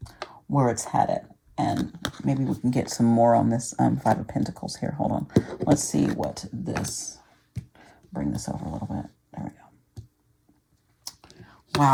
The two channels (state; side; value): identical; both; correlation 1.00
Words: where it's headed. And maybe we can get some more on this 5 of Pentacles here. Hold on. Let's see what this, bring this over a little bit. There we go.